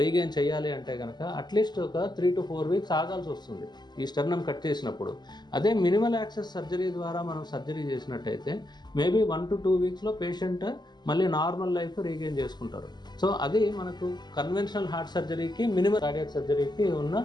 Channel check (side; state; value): right; late; 0.21 ms